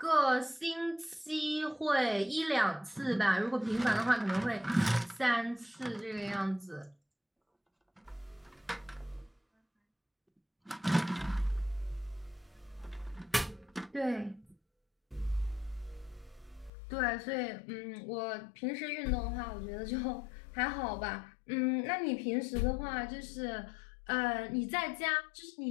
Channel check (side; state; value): right; drops out; at 16.7 s